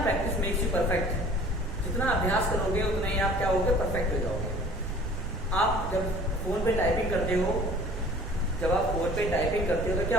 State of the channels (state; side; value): noise; right; rumble, 6 dB below the sound